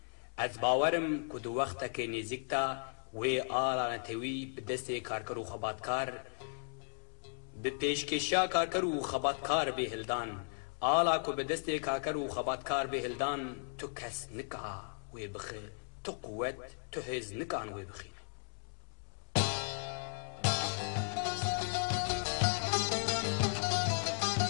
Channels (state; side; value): silent; right; 54 dB below the other